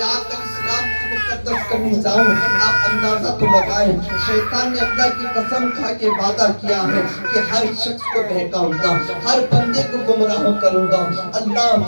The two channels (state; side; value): inverted; both; correlation -1.00